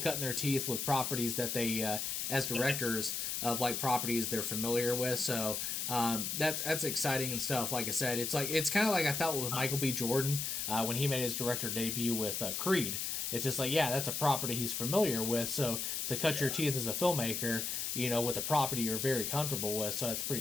their teeth with properties that they, as directors of like properties they're familiar with. So that's exciting and stuff. Like I said, it's kind of like I felt with Michael B. Jordan when he made his director debut with Creed. It's just like, yeah, that's a property he's familiar with. So to cut your teeth as a filmmaker, with a property you're very comfortable with, so that's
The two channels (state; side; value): noise; left; hiss, 2 dB below the sound